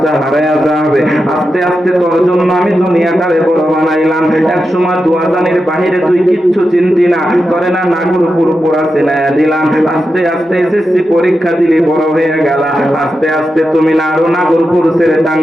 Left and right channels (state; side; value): normal; both; correlation 0.89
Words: হারাইয়া যাবে। আস্তে আস্তে তোর জন্য আমি দুনিয়াটারে বড় বানাইলাম। এক সময় দুয়াজানির বাহিরে তুই কিচ্ছু চিনতি না, তোরে না নাগরপুর পুরা চিনাইয়া দিলাম। আস্তে আস্তে এসএসসি পরীক্ষা দিলি, বড় হয়ে গেলা। আস্তে আস্তে তুমি না আরো নাগরপুর ছেড়ে